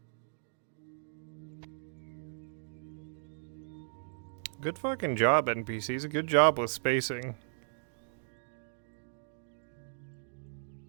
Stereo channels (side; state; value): left; silent; digital silence